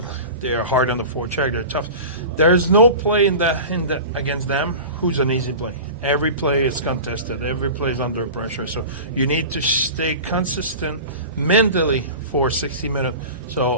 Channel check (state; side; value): inverted; both; correlation -0.33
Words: hard on the forecheck. They're tough. There's no play in the against them who's an easy play. Every play is contested. Every play is under pressure. So you need to stay consistent mentally for 60 minutes.